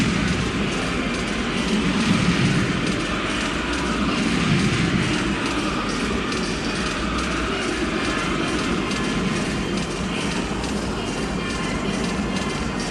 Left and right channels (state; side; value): identical; both; correlation 1.00